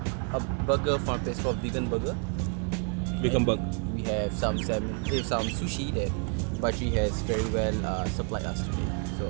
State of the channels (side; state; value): left; quieter; 38.2 dB